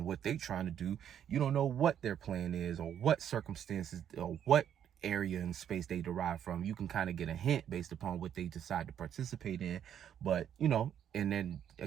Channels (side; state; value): left; quieter; 9.4 dB